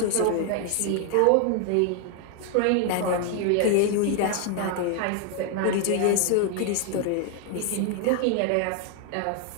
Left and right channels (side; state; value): both; different; correlation 0.00